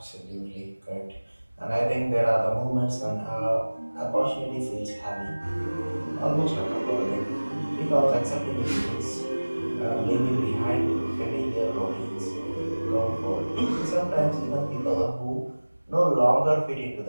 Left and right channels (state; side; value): inverted; both; correlation -1.00